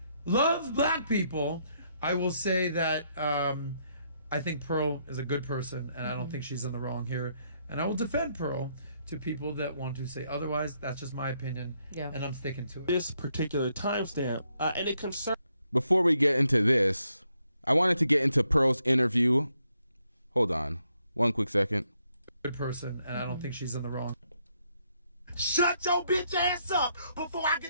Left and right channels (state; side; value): inverted; both; correlation -0.75